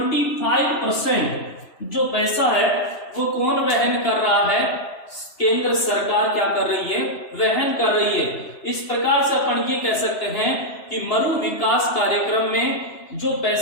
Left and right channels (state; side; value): late; right; 3.0 ms